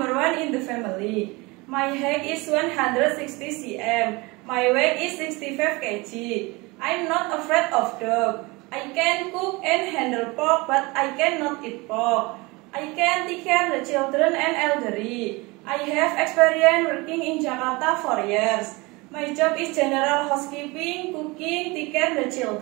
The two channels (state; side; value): quieter; left; 24.6 dB